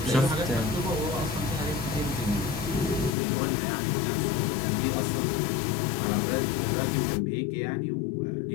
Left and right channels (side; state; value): right; drops out; at 3.2 s